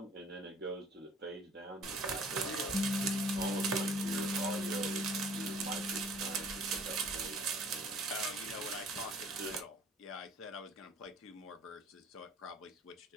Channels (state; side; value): normal; both; correlation 0.53